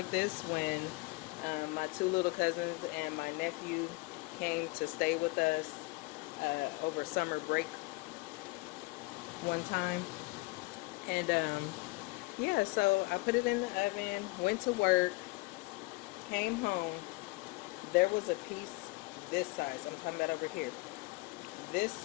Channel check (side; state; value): right; quieter; 24.3 dB